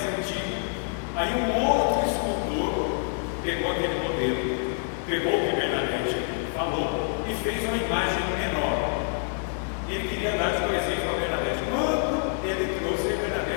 antiga. Aí um outro escultor pegou aquele modelo, pegou o que Bernadette falou e fez uma imagem menor. E ele queria dar de presente para a Bernadette. Quando ele trouxe a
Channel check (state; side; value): silent; right; digital silence